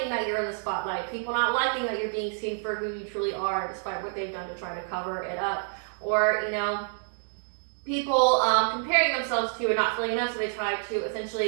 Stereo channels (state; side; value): silent; left; 59 dB below the other